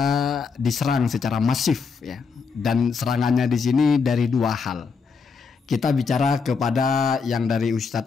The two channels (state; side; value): quieter; right; 5.2 dB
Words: diserang secara masif ya. Dan serangannya di sini dari dua hal. Kita bicara kepada yang dari